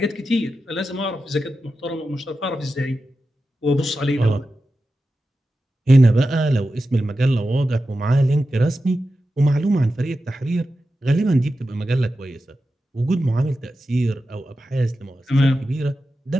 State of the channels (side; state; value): both; normal; correlation 0.91